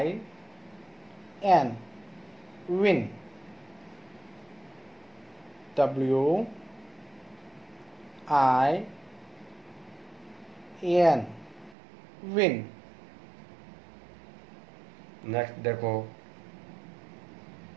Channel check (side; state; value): left; drops out; at 11.8 s